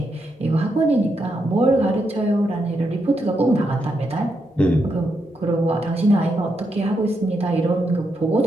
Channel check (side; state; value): both; normal; correlation 0.82